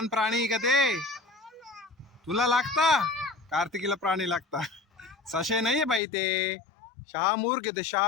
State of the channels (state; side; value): drops out; right; at 6.0 s